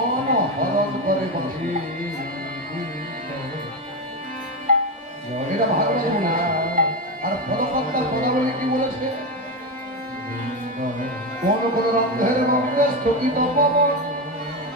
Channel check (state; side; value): normal; both; correlation 0.13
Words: হরণ করে বসে। এটা ভাগবত না। আর ফলকর্তার পদাবলী কি বলেছে? কোন কোন রন্ধের রন্ধে স্থগিত পবন,